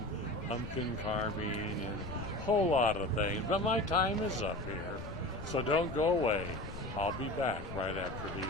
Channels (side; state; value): left; noise; rumble, 10 dB below the sound